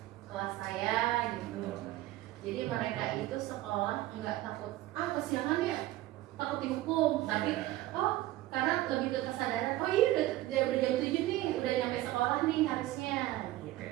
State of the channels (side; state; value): left; quieter; 16.3 dB